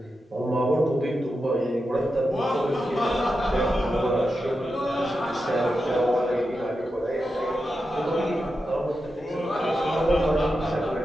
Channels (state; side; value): normal; both; correlation 0.89